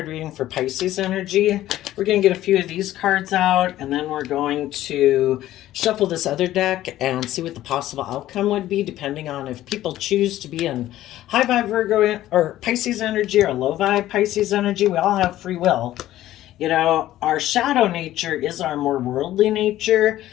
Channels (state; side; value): quieter; right; 14.1 dB